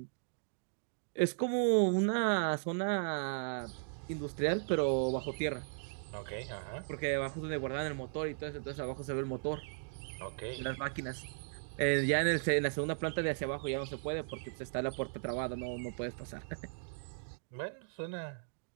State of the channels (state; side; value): silent; left; digital silence